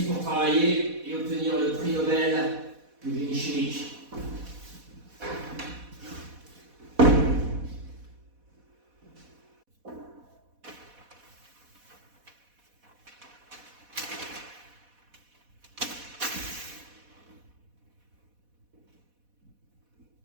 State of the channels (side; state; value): left; late; 4.1 ms